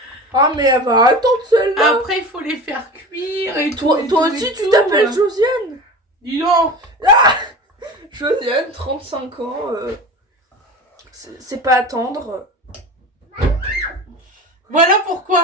Ah, mais elle va attendre celle-là. Après, il faut les faire cuire et Toi, tout. toi et tout, aussi, et tu tout. t'appelles Josiane. Dis donc. Josiane, 35 ans. C'est pas attendre. Voilà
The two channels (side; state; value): both; normal; correlation 0.32